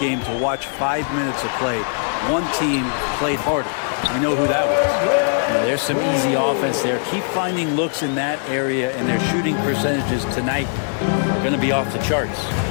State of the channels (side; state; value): right; silent; digital silence